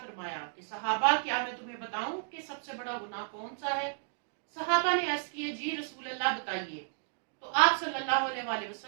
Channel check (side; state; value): left; silent; digital silence